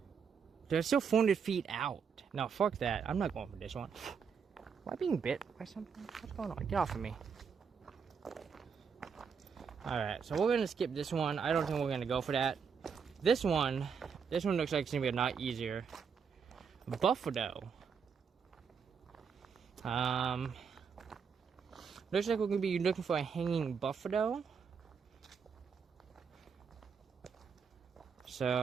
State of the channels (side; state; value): left; quieter; 6.3 dB